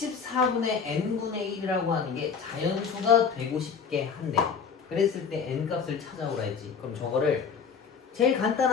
n분의 1이라고 하는 게 자연수가 되고 싶게 한대. 그랬을 때 n 값을 찾아오라 했지. 그럼 저거를 제일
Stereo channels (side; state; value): right; quieter; 6.2 dB